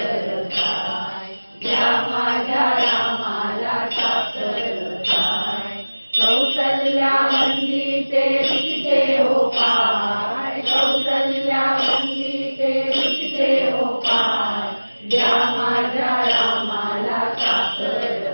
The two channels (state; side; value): inverted; both; correlation -1.00